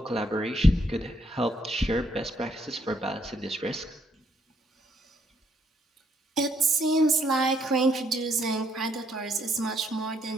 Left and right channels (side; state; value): both; normal; correlation 0.71